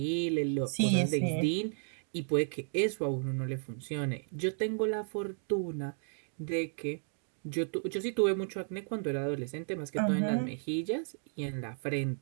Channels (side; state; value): left; silent; 55 dB below the other